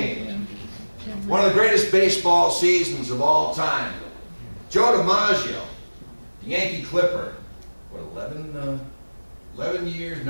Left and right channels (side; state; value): both; inverted; correlation -1.00